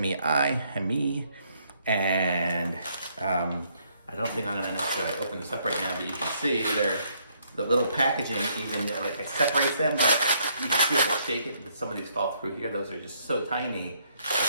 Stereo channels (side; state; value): both; inverted; correlation -0.70